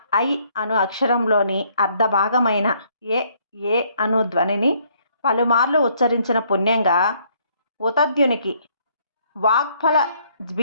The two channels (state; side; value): inverted; both; correlation -0.67